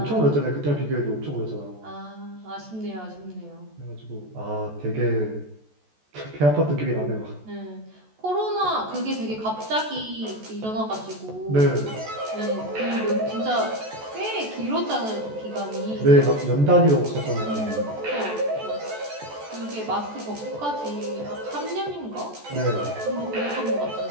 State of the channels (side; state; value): left; late; 14 ms